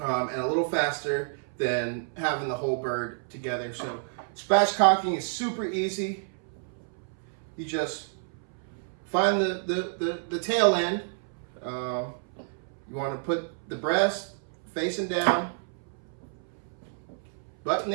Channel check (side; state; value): left; silent; 58 dB below the other